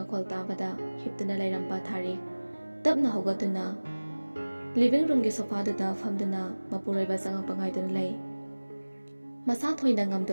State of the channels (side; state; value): both; inverted; correlation -1.00